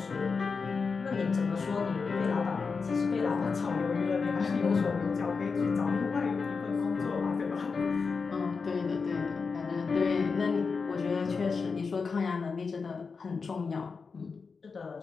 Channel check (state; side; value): quieter; right; 5.0 dB